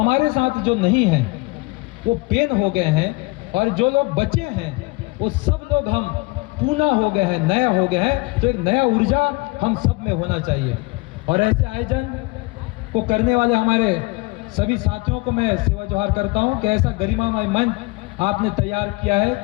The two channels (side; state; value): right; quieter; 25.0 dB